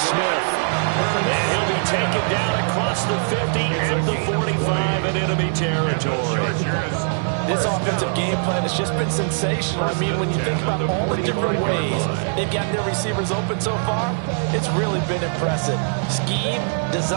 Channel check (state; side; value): silent; left; digital silence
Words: Smith. And he'll be taken down across the 50 at the 45 in enemy territory. This offensive game plan has just been sensational. I mean, when you think about all the different ways they've gotten their receivers open so far, it's really been impressive. Scheme,